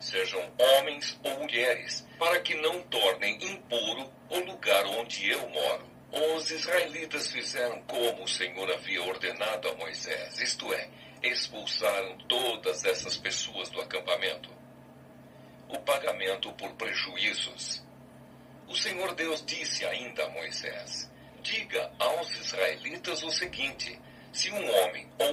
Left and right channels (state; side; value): identical; both; correlation 1.00